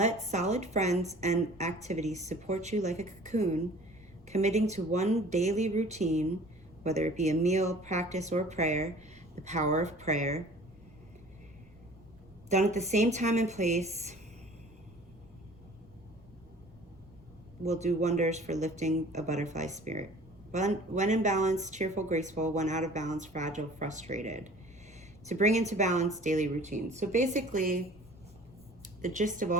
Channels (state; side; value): noise; right; rumble, 26 dB below the sound